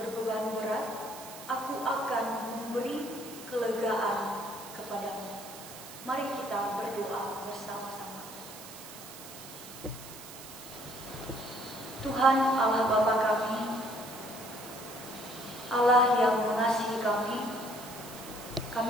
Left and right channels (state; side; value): noise; right; hiss, 14 dB below the sound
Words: berat, aku akan memberi kelegaan kepadamu." Mari kita berdoa bersama-sama. Tuhan Allah Bapa kami, Allah yang mengasihi